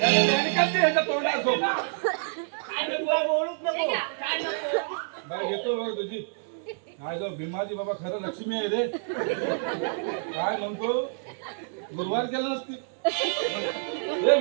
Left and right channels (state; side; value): silent; left; digital silence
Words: याने काय ते ह्याच्या तोंडात झोप काय नको बोलूच नको काय नको बाय घेतो बघ तुझी काय जो भीमाजी बाबा खरं लक्ष्मी आहे रे काय म्हणतो गुरुवार केलं नसती रे